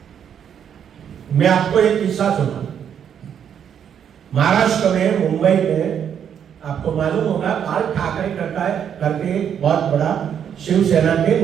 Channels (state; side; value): quieter; left; 8.5 dB